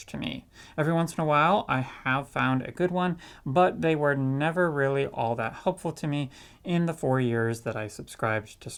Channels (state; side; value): identical; both; correlation 1.00